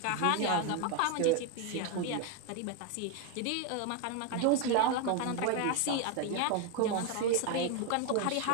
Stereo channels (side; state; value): both; different; correlation 0.01